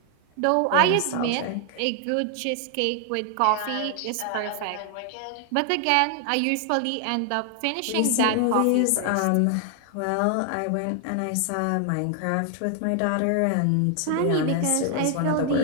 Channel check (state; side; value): different; both; correlation 0.00